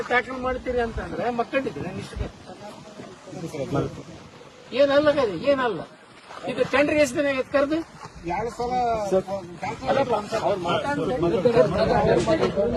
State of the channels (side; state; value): both; identical; correlation 1.00